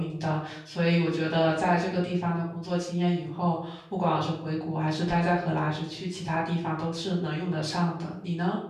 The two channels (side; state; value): both; identical; correlation 1.00